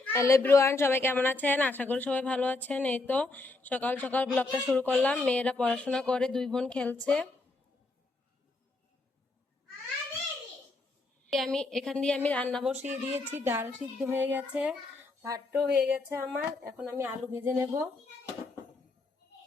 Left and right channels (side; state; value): right; quieter; 3.3 dB